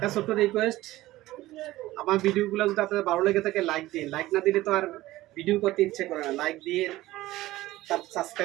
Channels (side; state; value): left; quieter; 16.9 dB